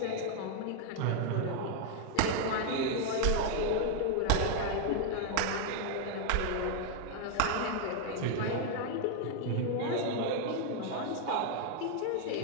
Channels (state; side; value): different; both; correlation 0.00